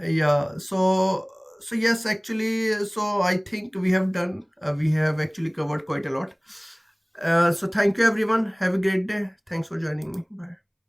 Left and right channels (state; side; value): identical; both; correlation 1.00